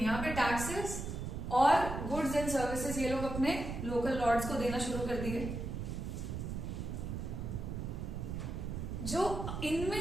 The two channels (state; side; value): noise; right; rumble, 5 dB below the sound